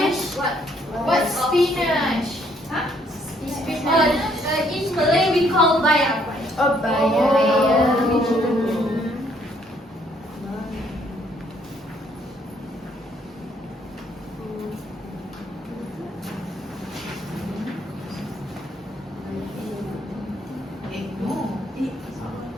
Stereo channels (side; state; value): both; normal; correlation 0.67